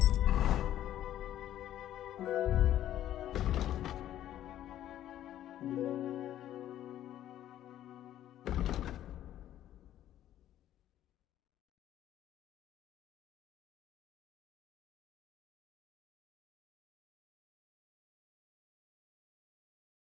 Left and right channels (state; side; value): quieter; right; 12.2 dB